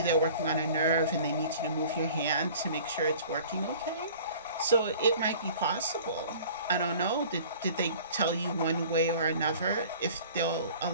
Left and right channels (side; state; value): both; inverted; correlation -0.46